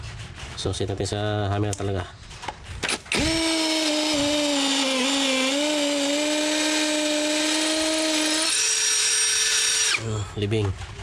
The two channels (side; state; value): both; identical; correlation 1.00